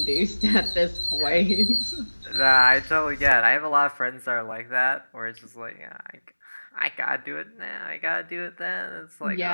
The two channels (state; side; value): inverted; both; correlation -1.00